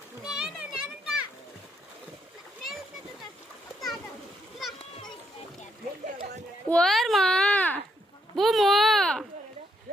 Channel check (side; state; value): both; normal; correlation 0.76